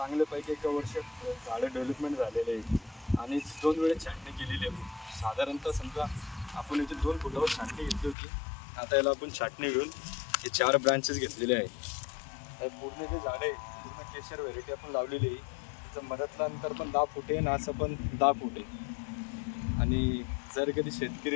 1 वर्षात झाडं डेव्हलपमेंट झालेले आहे आणि 2 वेळेस छाटणी केलेली आहे. साधारणतः समजा आपण इथे 2 फुटावर छाटणी घेतली होती. आता याला आपण छाटणी घेऊन हे 4 ब्रांचेस घेतलेले आहे. पूर्ण जे झाड आहे पूर्ण केशर व्हेरायटी आपण लावलेली आहे. मधातलं अंतर पण 10 फूट आहे आणि असं पण 10 फूट आहे. आणि जर कधी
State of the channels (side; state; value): right; drops out; at 8.2 s